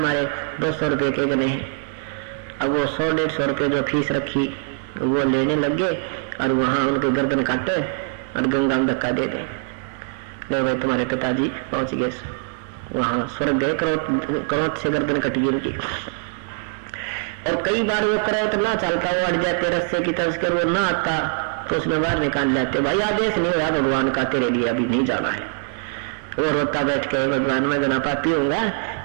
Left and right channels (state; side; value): silent; left; digital silence